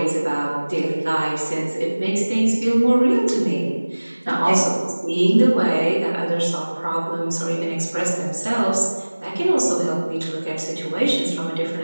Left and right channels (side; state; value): both; inverted; correlation -1.00